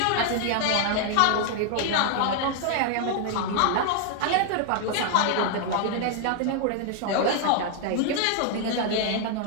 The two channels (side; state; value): both; different; correlation 0.00